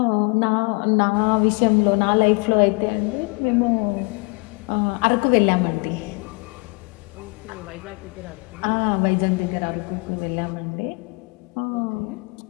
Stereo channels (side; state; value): right; quieter; 30.4 dB